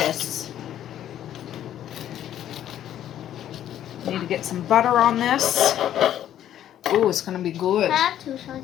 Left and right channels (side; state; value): right; quieter; 11.2 dB